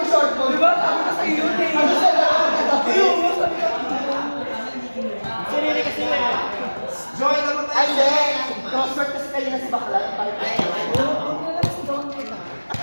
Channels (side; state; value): both; inverted; correlation -1.00